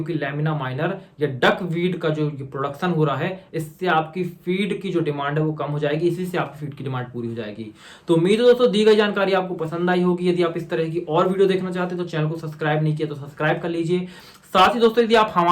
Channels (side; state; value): both; identical; correlation 1.00